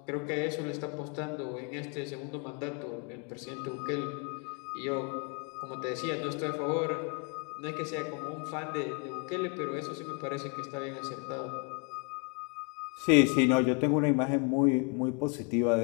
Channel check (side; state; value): right; quieter; 36.3 dB